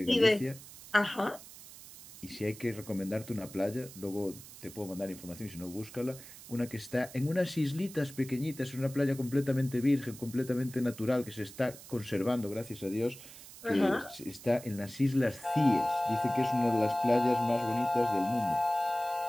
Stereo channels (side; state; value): right; noise; hiss, 17 dB below the sound